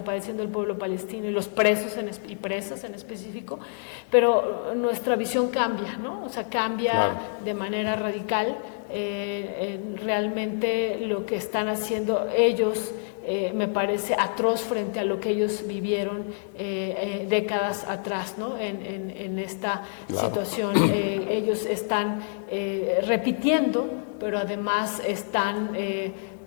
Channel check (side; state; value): right; silent; digital silence